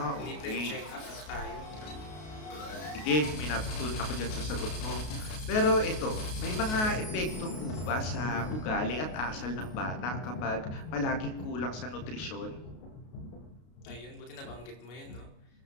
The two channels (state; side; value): late; right; 33 ms